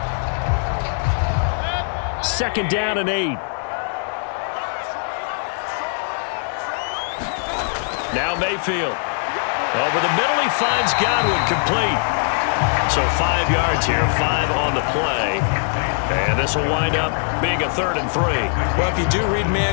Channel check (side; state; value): right; silent; digital silence